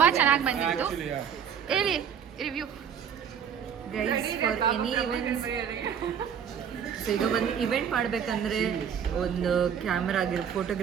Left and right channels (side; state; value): left; quieter; 8.0 dB